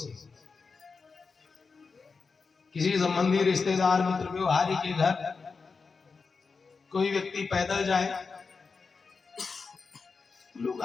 किसी संबंधी, रिश्तेदार, मित्र, व्यवहारी के घर कोई व्यक्ति पैदल जाए, लोग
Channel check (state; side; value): quieter; right; 4.8 dB